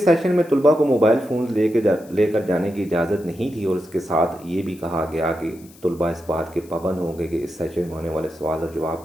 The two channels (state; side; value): noise; left; hiss, 25 dB below the sound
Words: سیشن میں طلباء کو موبائل فونز لے کر جانے کی اجازت نہیں تھی، اور اس کے ساتھ یہ بھی کہا گیا کہ طلباء اس بات کے پابند ہوں گے کہ اس سیشن میں ہونے والے سوال اور